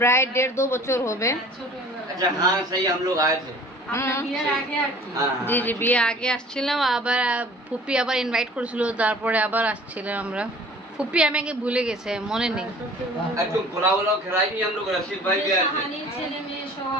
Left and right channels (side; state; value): both; normal; correlation 0.48